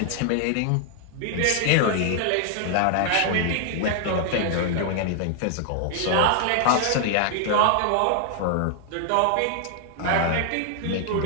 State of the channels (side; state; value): both; different; correlation 0.00